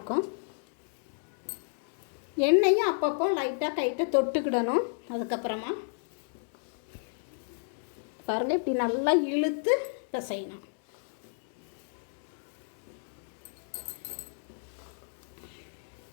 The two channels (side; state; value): right; silent; digital silence